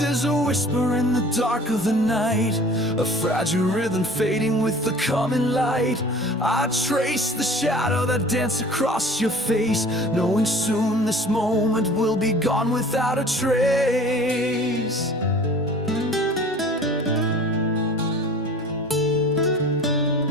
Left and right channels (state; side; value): normal; both; correlation 0.45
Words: is a whisper in the dark of the night, a fragile rhythm fading with the coming light. I trace the shadow that dances across your face, knowing soon this moment will be gone without a trace.